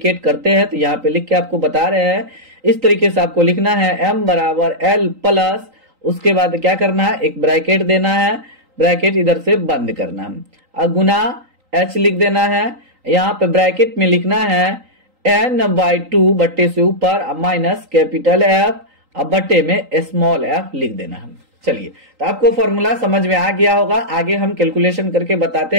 करते हैं, तो यहाँ पे लिख के आपको बता रहे हैं। इस तरीके से आपको लिखना है एम बराबर एल प्लस, उसके बाद क्या करना है, एक ब्रैकेट देना है, ब्रैकेट इधर से बंद करना है, और गुना एच लिख देना है। यहाँ पे ब्रैकेट में लिखना है n/2 बट्टे से ऊपर माइनस कैपिटल एफ, अब बट्टे में स्मॉल एफ लिख देना है। चलिए तो आपको फॉर्मूला समझ में आ गया होगा। आगे हम कैलकुलेशन करके बताते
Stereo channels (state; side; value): late; left; 3.8 ms